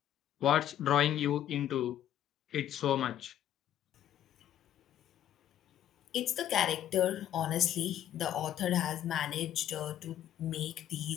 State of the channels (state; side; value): quieter; right; 11.1 dB